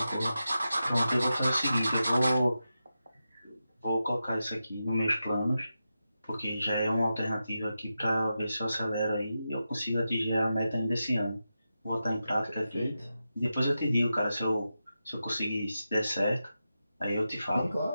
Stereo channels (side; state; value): both; inverted; correlation -0.90